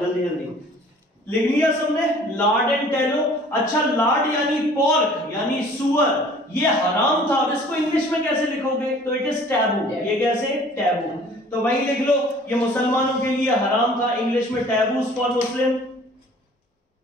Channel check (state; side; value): normal; both; correlation 0.51